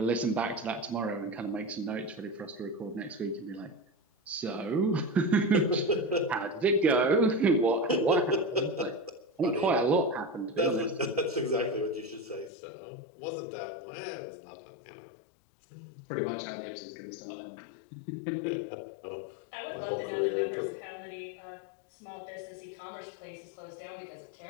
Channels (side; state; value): right; drops out; at 12.5 s